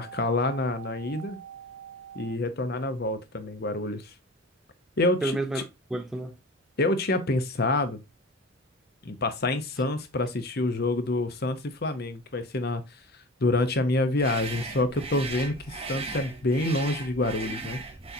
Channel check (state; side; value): normal; both; correlation 0.36